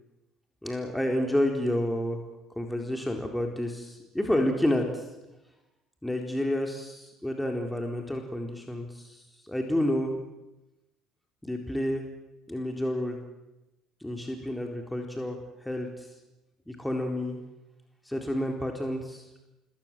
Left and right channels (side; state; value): both; normal; correlation 0.89